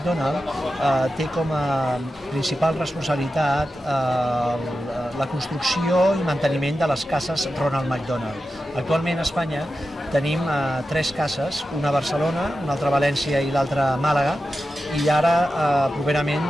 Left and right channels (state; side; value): normal; both; correlation 0.91